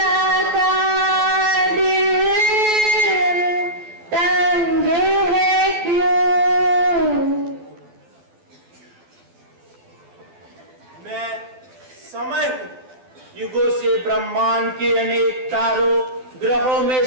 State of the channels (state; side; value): late; left; 12 ms